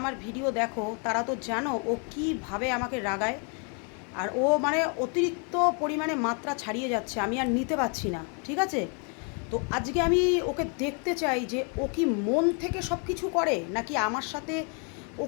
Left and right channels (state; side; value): quieter; right; 37.9 dB